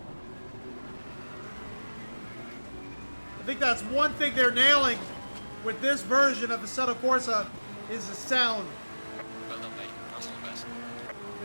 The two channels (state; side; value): inverted; both; correlation -1.00